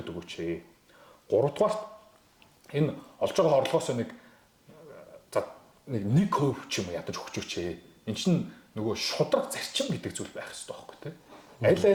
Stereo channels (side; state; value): both; identical; correlation 1.00